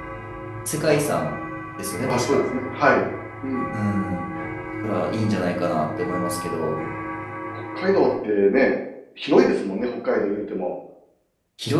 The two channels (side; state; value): both; identical; correlation 1.00